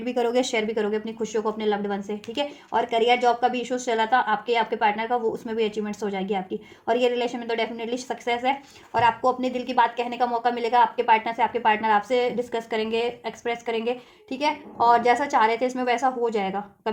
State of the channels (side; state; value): both; identical; correlation 1.00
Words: भी करोगे, शेयर भी करोगे अपनी खुशियों को अपने लव्ड वन से, ठीक है। और करियर जॉब का भी इशूज चला था आपके पार्टनर का, वो उसमें भी अचीवमेंट्स हो जाएगी आपकी। और ये रिलेशन में तो डेफिनेटली सक्सेस है। और आपको अपने दिल की बात कहने का मौका मिलेगा आपके पार्टनर से, आपके पार्टनर आपसे डिस्कस करेंगे, एक्सप्रेस करेंगे, ठीक है। और जैसा चाह रहे थे इसमें वैसा हो जाएगा,